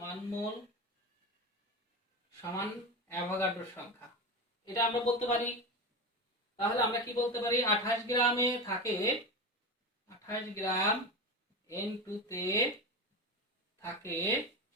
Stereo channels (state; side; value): normal; both; correlation 0.22